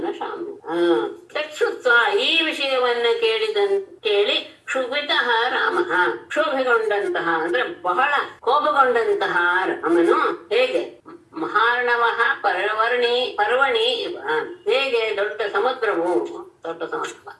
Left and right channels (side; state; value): both; identical; correlation 1.00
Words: ತತ್ಸುತ್ವಾ ಈ ವಿಷಯವನ್ನ ಕೇಳಿ ಕ್ಷುಭಿತಃ ರಾಮಃ ಕ್ಷೋಭೆಗೊಂಡಂತಹ ಅಂದ್ರೆ ಬಹಳ ಕೋಪಗೊಂಡಂತಹ ರಾಮನು ಹೇಗೆ ಮಹಾರ್ಣವಃ ಪರ್ವಣಿ ಇವ ಹೇಗೆ ದೊಡ್ಡ ಸಮುದ್ರ